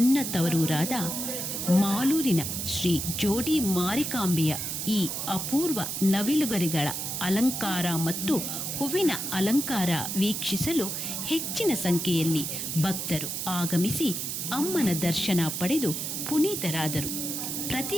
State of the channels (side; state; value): right; noise; hiss, 3 dB below the sound